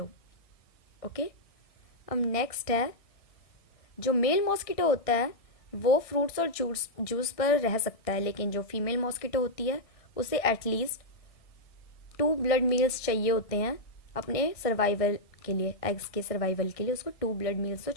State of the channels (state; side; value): late; right; 1.6 ms